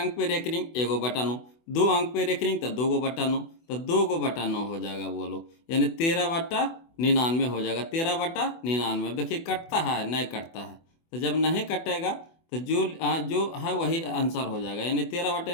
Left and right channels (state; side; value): late; right; 24 ms